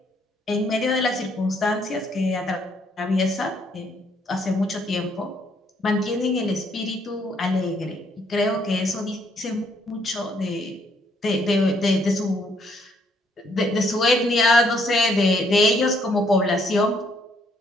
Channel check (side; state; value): both; normal; correlation 0.69